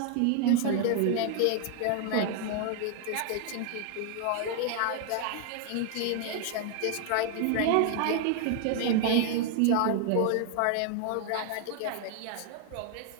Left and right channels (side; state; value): both; different; correlation 0.00